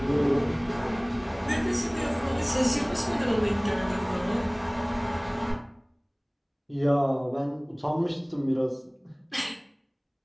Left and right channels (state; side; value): identical; both; correlation 1.00